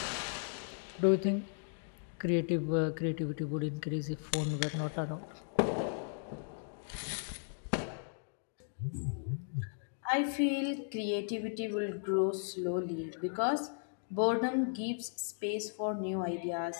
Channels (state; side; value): silent; right; digital silence